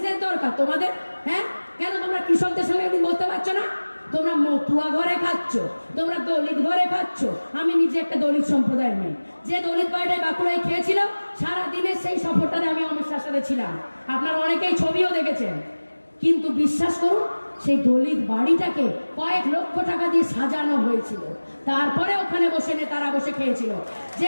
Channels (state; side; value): inverted; both; correlation -1.00